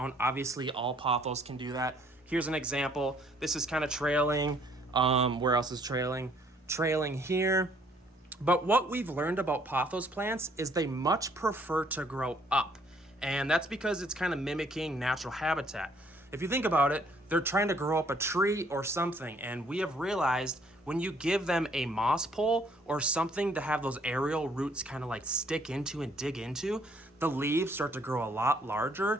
Obviously, all pothos can do that. Here's an example. This is kind of trailing. Where else is trailing? Trailing here. But what we've learned about pothos plants is they much prefer to grow up. And that's because it's kind of mimicking natural habitat. If you think about it, they're trying to grow up a tree or something. And we have realized when you give them a moss pole or something to have those aerial roots kind of like stick into and dig into, the leaves start to grow a lot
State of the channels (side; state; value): both; normal; correlation 0.63